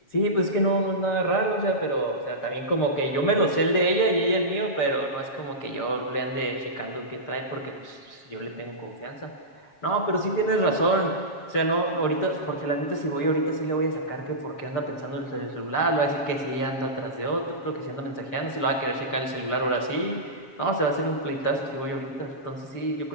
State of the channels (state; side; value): late; right; 7.3 ms